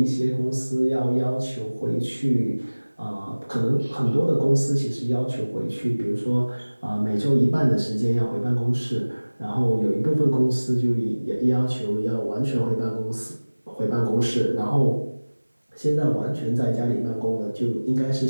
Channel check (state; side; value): inverted; both; correlation -1.00